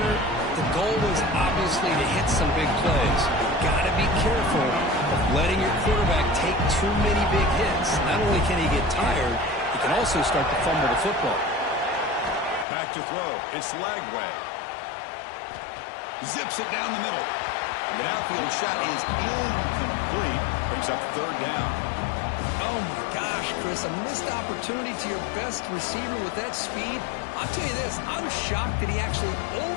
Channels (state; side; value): drops out; right; at 12.7 s